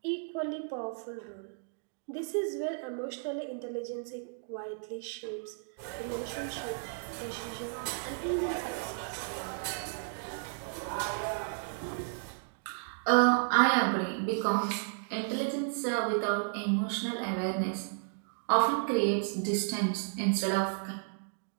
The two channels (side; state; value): left; silent; digital silence